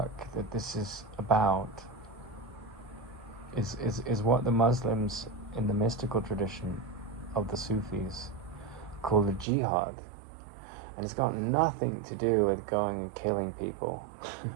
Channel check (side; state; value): left; drops out; at 9.5 s